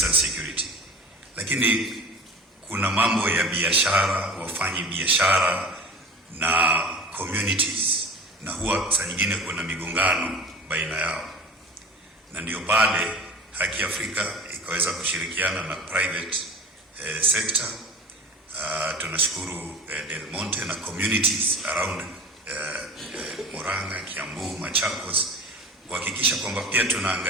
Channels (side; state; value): both; normal; correlation 0.39